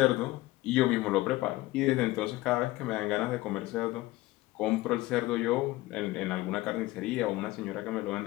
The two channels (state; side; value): quieter; right; 18.8 dB